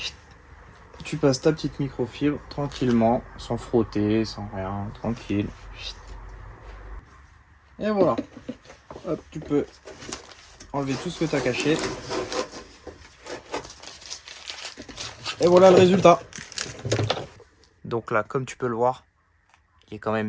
tu passes ta petite microfibre tranquillement, sans frotter, sans rien, tranquille. Et voilà. Hop, tu peux enlever tout ce que tu as caché. Et voilà le résultat. Donc là, comme tu peux le voir, il est quand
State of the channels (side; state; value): both; identical; correlation 1.00